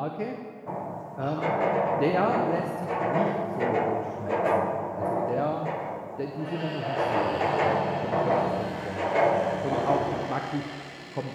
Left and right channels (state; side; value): identical; both; correlation 1.00